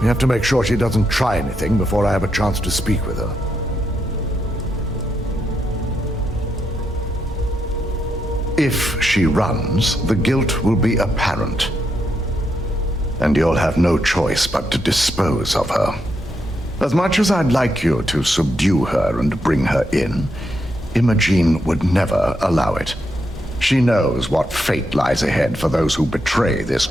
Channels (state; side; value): normal; both; correlation 0.81